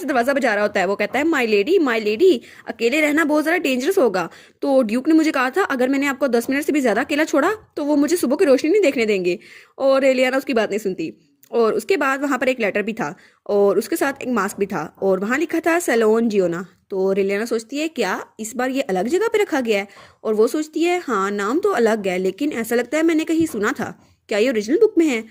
दरवाजा बजा रहा होता है। वो कहता है माई लेडी अकेले रहना बहुत ज़्यादा डेंजरस होगा। तो ड्यूक ने मुझे कहा था अगर मैंने आपको 10 मिनट से भी ज़्यादा अकेला छोड़ा तो वो मुझे सुबह की रोशनी नहीं देखने देंगे। और रेलियाना उसकी बात नहीं सुनती। और उसके बाद वहां पर एक लेटर भी था और उसके साथ एक मास्क भी था और वहां लिखा था सैलोन जियोना। तो रेलियाना सोचती है क्या इस बार ये अलग जगह पे रखा गया है? और वो सोचती है हाँ नाम तो अलग है, लेकिन ऐसा लगता है मैंने कहीं सुना था, क्या ये ओरिजिनल बुक में है?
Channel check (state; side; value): identical; both; correlation 1.00